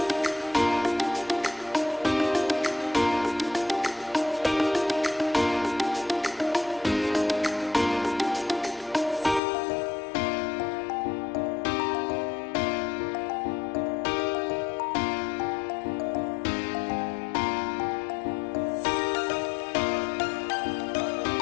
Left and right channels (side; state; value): right; drops out; at 9.4 s